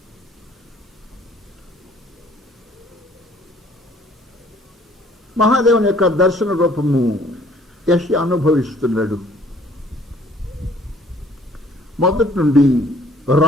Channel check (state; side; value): normal; both; correlation 0.57